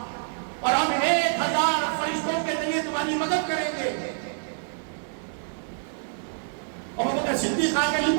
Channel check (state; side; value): silent; left; digital silence